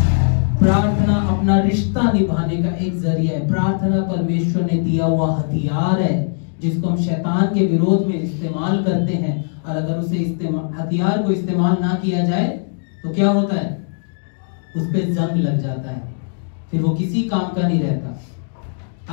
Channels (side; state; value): right; silent; digital silence